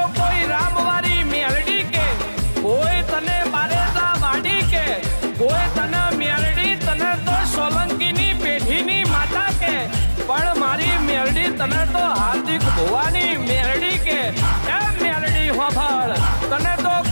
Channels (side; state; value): both; inverted; correlation -1.00